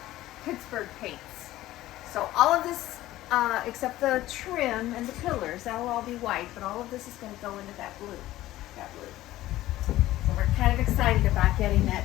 Pittsburgh Paints. So all of this, except the trim and the pillars, that will all be white, but all of this is going to go into that blue. So we're kind of excited about getting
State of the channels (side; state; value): right; quieter; 15.5 dB